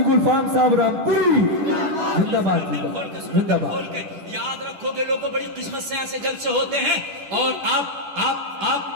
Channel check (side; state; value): left; late; 10 ms